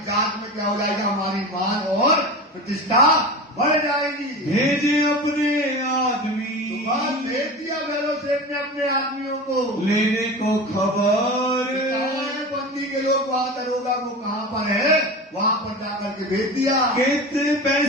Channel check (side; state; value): both; normal; correlation 0.29